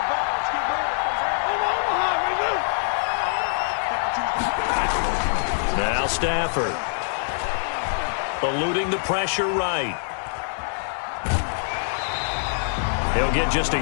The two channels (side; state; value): right; silent; digital silence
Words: Now Stafford. Eluding the pressure right. He'll get just